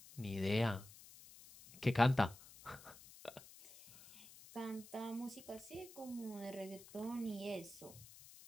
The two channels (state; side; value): noise; left; hiss, 19 dB below the sound